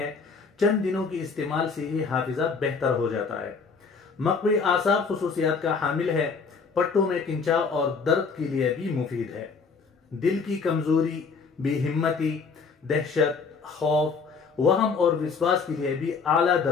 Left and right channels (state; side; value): quieter; right; 5.1 dB